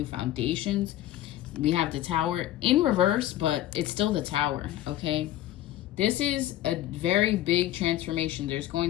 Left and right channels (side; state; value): right; quieter; 13.9 dB